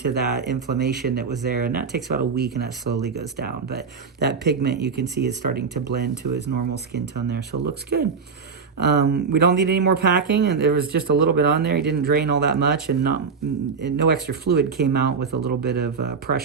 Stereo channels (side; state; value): left; quieter; 5.4 dB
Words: that inflammation that was there, and that takes about a week, and that slowly goes down. But that pigment, you can see, is starting to blend to his normal skin tone there, so it looks good. We don't need any more packing, and there was just a little bit on there. He didn't drain all that much, and no extra fluid came out with a little bit of